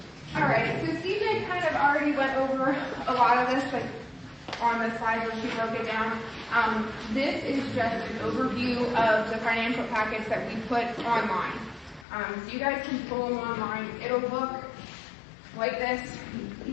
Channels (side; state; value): right; drops out; at 12.1 s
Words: All right, so Stephen kind of already went over a lot of this, like on the slide where she broke it down. This is just an overview of the financial packets that we put online. So you guys can pull them online. It'll look like this.